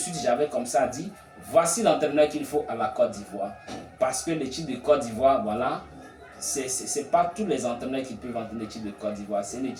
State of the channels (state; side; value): identical; both; correlation 1.00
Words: j'avais comme ça dit, voici l'entraîneur qu'il faut à la Côte d'Ivoire. Parce que l'équipe de Côte d'Ivoire, c'est pas tous les entraîneurs qui peuvent entraîner l'équipe de Côte d'Ivoire. C'est une